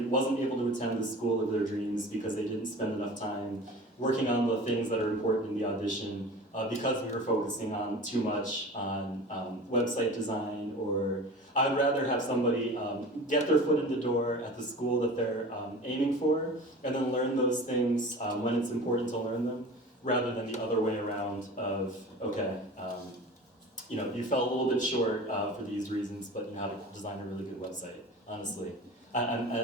wasn't able to attend the school of their dreams because they didn't spend enough time working on the things that are important in the audition because we were focusing on too much on website design, or I'd rather have somebody get their foot in the door at the school that they're aiming for and then learn those things when it's important to learn them, rather than the other way around of, okay, you know, you fell a little bit short for these reasons, but you know how to design a really good website, honestly.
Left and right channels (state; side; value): normal; both; correlation 0.38